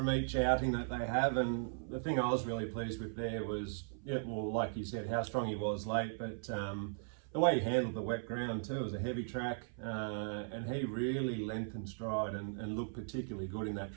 each outing that they have. And the thing I was really pleased with there was, like you said, how strong he was late, but the way he handled the wet ground too. It was a heavy track, and he really lengthened stride and looked particularly good in that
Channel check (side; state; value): left; silent; 53 dB below the other